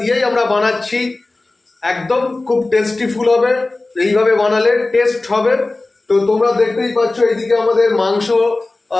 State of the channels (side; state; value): right; quieter; 3.1 dB